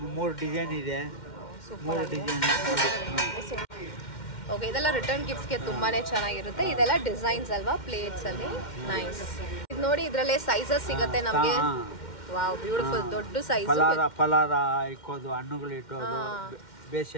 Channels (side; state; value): right; late; 2.1 ms